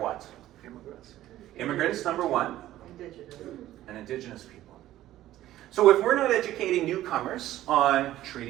Immigrants. Immigrants, number one. Indigenous. And Indigenous people. So if we're not educating newcomers on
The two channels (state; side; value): quieter; left; 14.1 dB